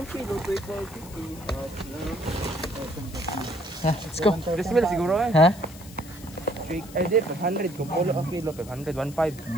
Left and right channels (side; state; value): left; noise; hiss, 19 dB below the sound